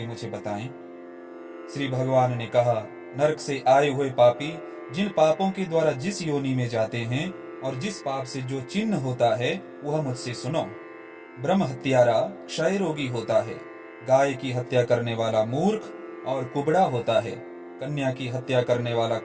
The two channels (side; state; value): both; identical; correlation 1.00